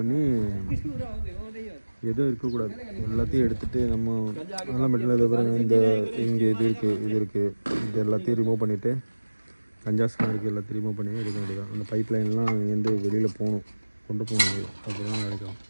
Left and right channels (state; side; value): inverted; both; correlation -1.00